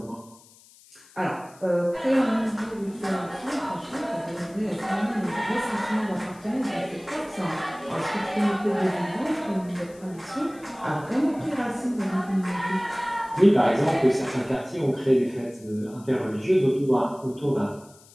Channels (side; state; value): left; noise; hiss, 25 dB below the sound